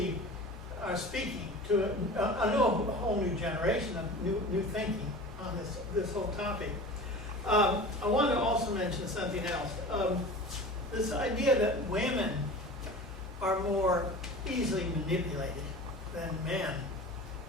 are speaking to a whole new generation of new thinking on this whole topic. I want to also mention something else. This idea that women are more easily manipulated than men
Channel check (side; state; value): both; normal; correlation 0.36